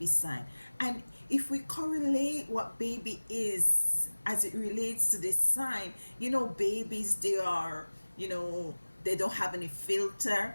sign. And if we correlate what baby is as it relates to this sign, babies, they don't have any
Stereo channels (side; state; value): both; inverted; correlation -1.00